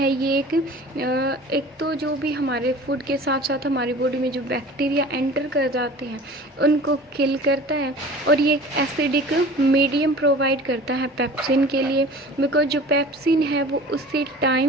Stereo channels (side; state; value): both; normal; correlation 0.42